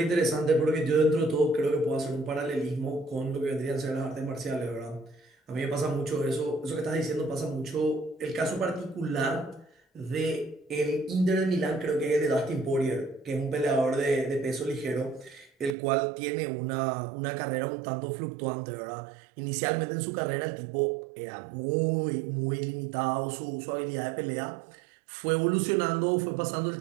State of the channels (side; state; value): left; drops out; at 15.8 s